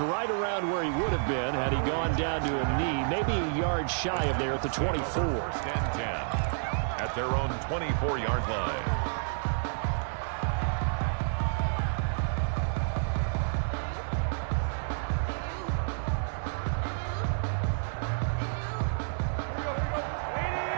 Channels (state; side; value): silent; left; 58 dB below the other